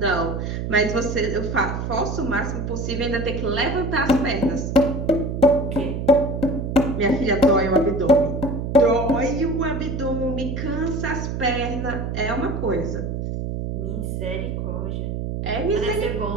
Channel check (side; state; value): right; noise; hum, 3 dB below the sound